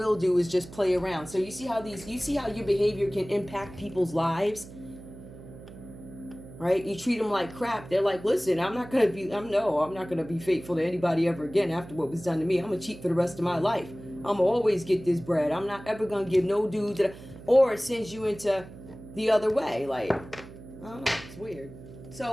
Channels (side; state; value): right; noise; hum, 16 dB below the sound